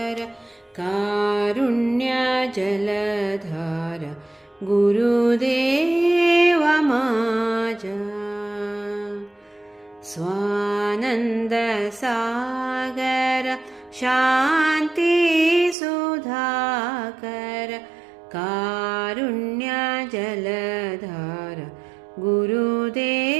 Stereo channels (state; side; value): drops out; left; at 15.8 s